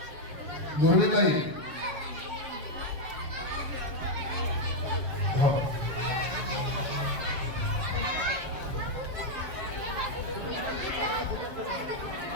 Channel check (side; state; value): left; late; 7.4 ms